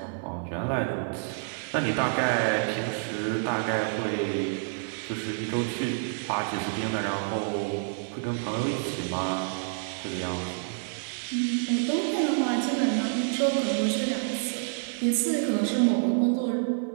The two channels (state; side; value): silent; left; 57 dB below the other